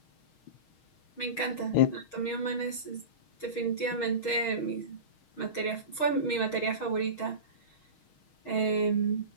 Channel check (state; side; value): late; right; 6.4 ms